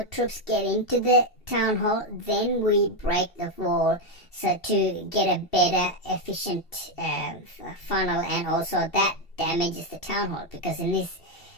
troops get into the town hall, then we break the wall, so to get a better, efficient funnel, and also that damages the town hall, because in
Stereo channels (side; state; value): right; late; 2.7 ms